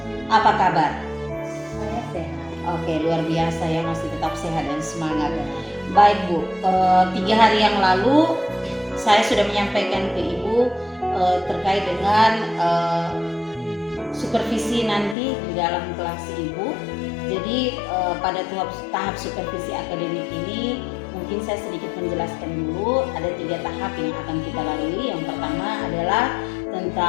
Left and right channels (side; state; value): right; drops out; at 15.2 s